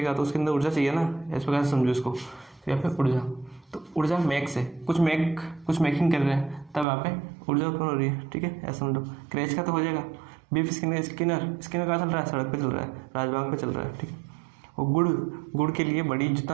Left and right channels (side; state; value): left; drops out; at 6.9 s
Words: तो उसके अंदर ऊर्जा चाहिए ना, इस प्रकार से समझो इसको। तो यहाँ पे ऊर्जा, तो ऊर्जा मेक से कुछ मेकिंग कर रहे हैं, तब यहाँ पे ऊर्जा उत्पन्न हो रही है। ठीक है, ऐसा समझो। क्रैश का तो हो जाएगा। BF स्किनर कहाँ चल रहा है, सड़क पे चल रहा है, राजमार्ग पे चल रहा है। ठीक है, और गुड़ के लिए बड़ी,